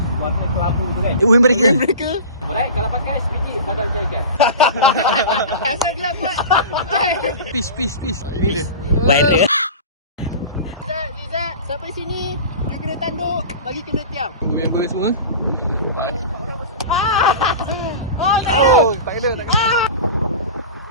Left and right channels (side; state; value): both; inverted; correlation -0.33